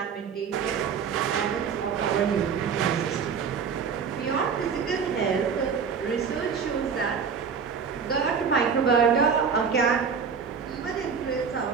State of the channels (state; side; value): quieter; left; 6.3 dB